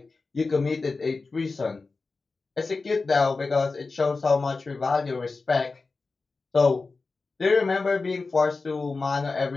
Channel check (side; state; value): right; quieter; 4.0 dB